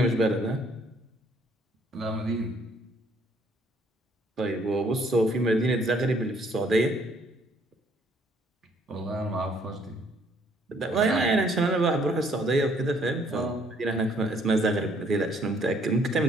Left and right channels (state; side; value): normal; both; correlation 0.64